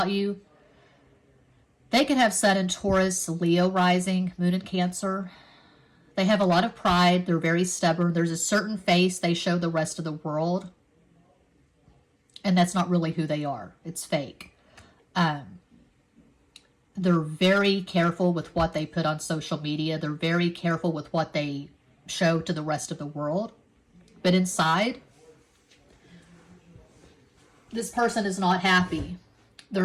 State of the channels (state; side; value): identical; both; correlation 1.00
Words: you, they could have Sun in Taurus, Leo rising, Moon in Cancer. They have a lot of pride. They're very stubborn. There's a certain face they show the rest of the world, and that's not really who they are. It's fake. They're very careful with what they put on social media. They're very careful with what they show to the rest of the world. But inside, this person is not happy.